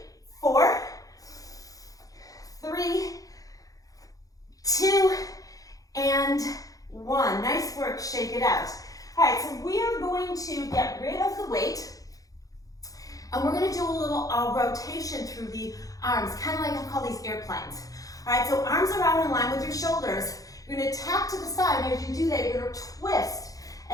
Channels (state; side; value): late; right; 0.17 ms